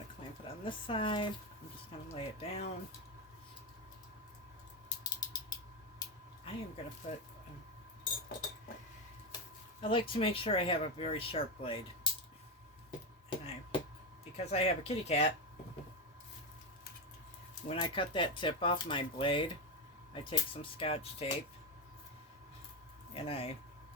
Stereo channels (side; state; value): both; normal; correlation 0.12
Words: to clamp it on this side. I'm just going to lay it down. I am going to put, I like to make sure I have a very sharp blade. And because I have a kitty cat, when I cut that tip off my blade, I take some Scotch tape and I